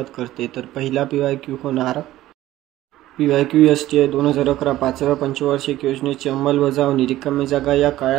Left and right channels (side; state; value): left; quieter; 15.0 dB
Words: करते। तर पहिला PYQ होणार PYQ STI 2011 5व्या पंचवार्षिक योजनेची अंमलबजावणी रिकामी जागा या